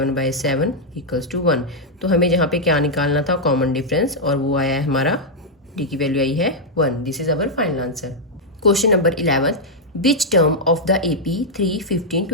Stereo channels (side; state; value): both; normal; correlation -0.04